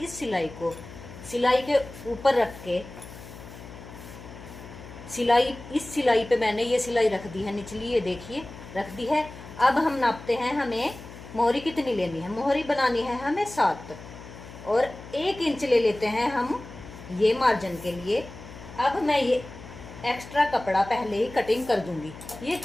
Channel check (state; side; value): noise; left; hum, 15 dB below the sound